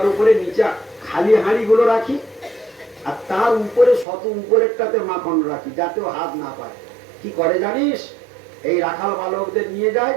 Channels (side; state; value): left; drops out; at 4.0 s